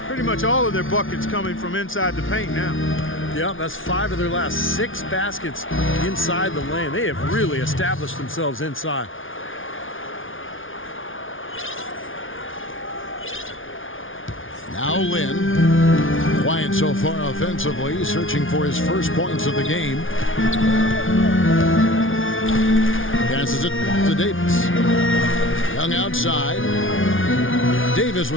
Pretty much all of their buckets coming from inside the paint now. Yeah, that's 5 of their last 6 baskets inside the lane. They have really established themselves inside. Now Lynn, quiet so far offensively, searching for his first points of the game. Passes it to Davis. Young outside. Davis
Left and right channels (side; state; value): right; late; 0.57 ms